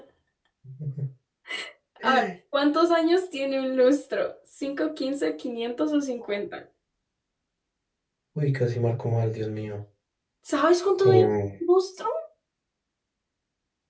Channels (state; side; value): identical; both; correlation 1.00